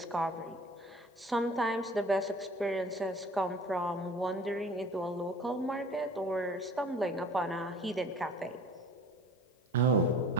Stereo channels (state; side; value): normal; both; correlation 0.46